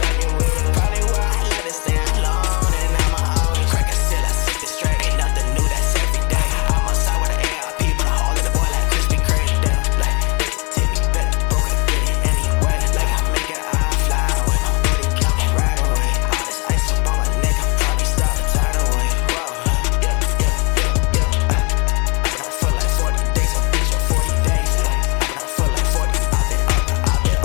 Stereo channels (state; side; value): quieter; right; 30.0 dB